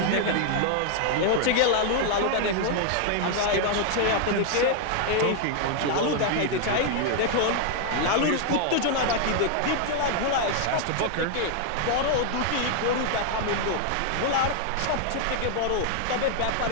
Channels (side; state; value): both; different; correlation 0.00